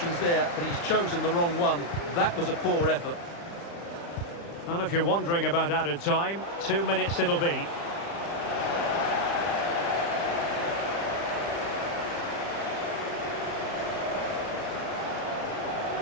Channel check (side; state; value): right; late; 35 ms